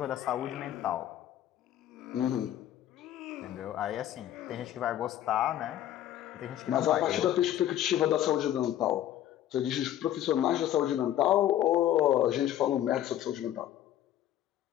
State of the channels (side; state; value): right; quieter; 12.0 dB